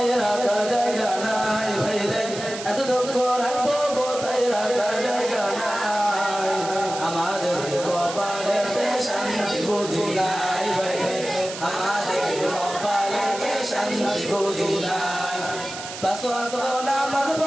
রাখার জায়গা নাই ভাইরে, এত দুঃখ রাখবো কোথায় রাখার জায়গা নাই। আমাদের কপালেতে শান্তি বুদ্ধি নাই ভাইরে, আমাদের কপালেতে শান্তি বুদ্ধি নাই। পাঁচ ওয়াক্ত নামাজ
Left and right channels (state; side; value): noise; right; hiss, 10 dB below the sound